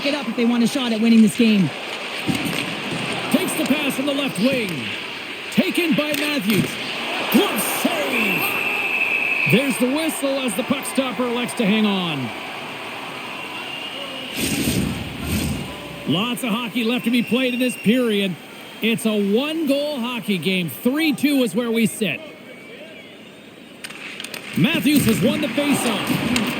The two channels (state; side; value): identical; both; correlation 1.00